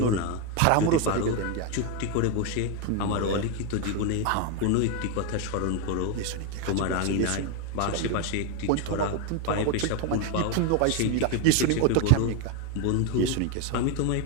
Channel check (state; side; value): different; both; correlation 0.02